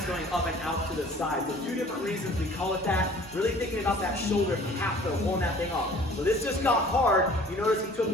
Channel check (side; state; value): both; normal; correlation 0.50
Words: going up and out to the side. So 2 different reasons we call it that. Really thinking about that shoulder cap though, pulling that thing off. So this just got hard. You notice he took